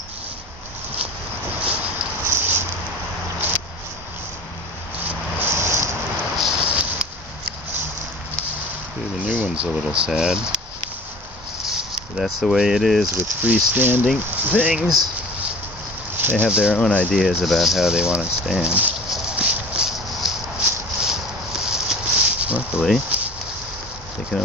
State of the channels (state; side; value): normal; both; correlation 0.42